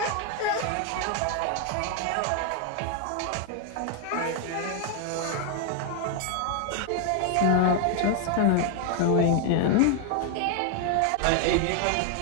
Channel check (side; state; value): both; different; correlation 0.00